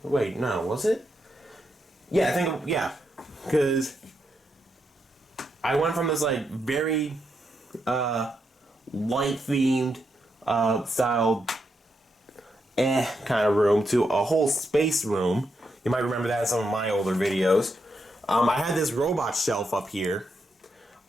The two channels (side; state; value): both; normal; correlation 0.82